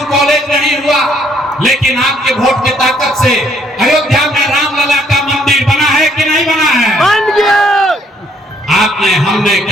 कॉलेज नहीं हुआ, लेकिन आपके वोट की ताकत से अयोध्या में रामलला का मंदिर बना है कि नहीं बना है? बन गया। आपने, हमने,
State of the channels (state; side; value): normal; both; correlation 0.67